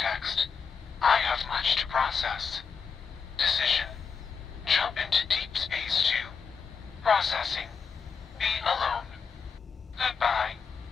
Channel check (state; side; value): quieter; right; 5.9 dB